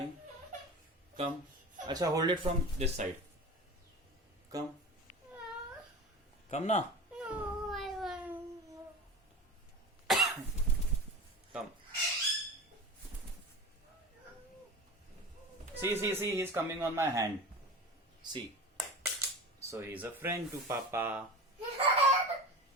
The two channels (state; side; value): normal; both; correlation 0.31